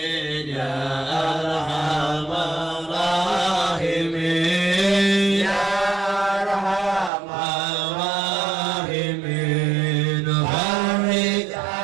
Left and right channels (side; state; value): left; drops out; at 7.1 s